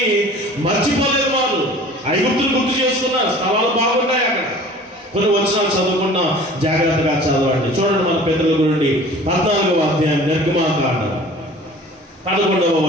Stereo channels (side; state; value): both; normal; correlation 0.45